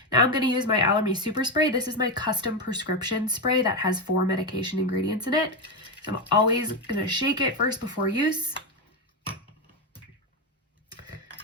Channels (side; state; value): both; normal; correlation 0.10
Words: Now I'm gonna use my Allermy Super Spray. This is my custom prescription spray that has 4 medication ingredients in it. So I'm always gonna shake it first before use.